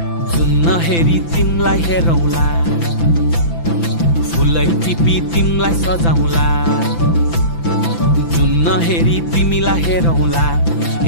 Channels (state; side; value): late; right; 5.9 ms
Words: जुन नहेरी तिमलाई हेरौँला फुलै टिपी तिमलाई सजाउँला जुन नहेरी तिमीलाई हेरौँला